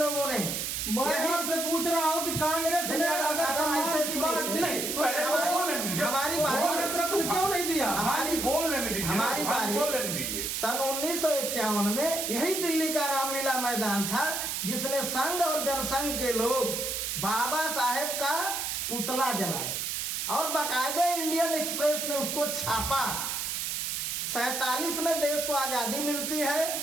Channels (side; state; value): right; noise; hiss, 2 dB below the sound